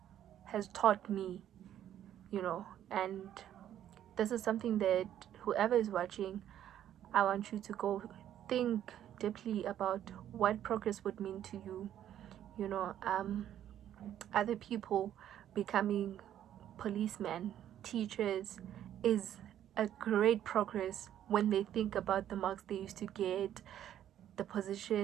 taught me, and this is something that whoever is watching, I want you to go think deeply about what progress would mean to you. Other people becoming policemen, teachers, is a great progress when they think about the marks they used to get, the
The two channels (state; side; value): quieter; left; 11.0 dB